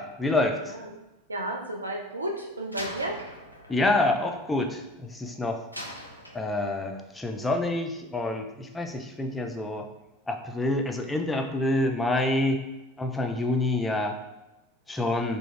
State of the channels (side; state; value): both; normal; correlation 0.53